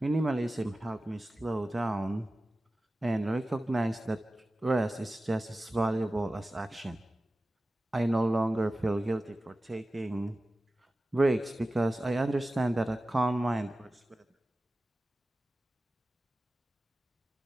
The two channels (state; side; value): normal; both; correlation 0.95